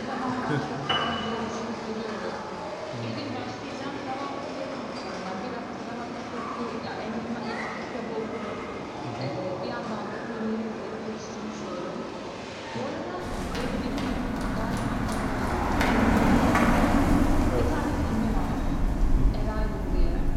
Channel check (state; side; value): identical; both; correlation 1.00